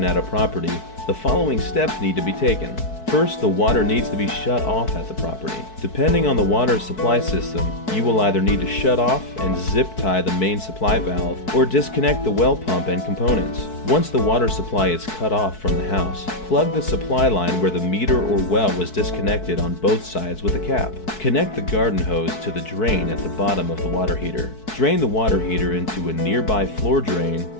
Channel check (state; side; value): late; right; 4.6 ms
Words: at a property, the following steps need to be taken. First, the water needs to be shut off at the property. Depending on the water supply system, you will either need to shut off and zip tie the main supply valve or disconnect the well pump and components. Once the water supply is cut off from the house, plug the supply line where the meter or well was disconnected on both sides with a cap. Connect the garden hose to the drain at the bottom of the water heater. Drain the water heater into a nearby floor drain